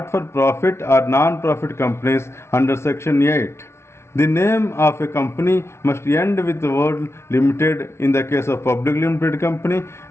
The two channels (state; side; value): late; right; 0.13 ms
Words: for profit or non-profit companies under section 8. The name of a company must end with the word limited in the case of public limited company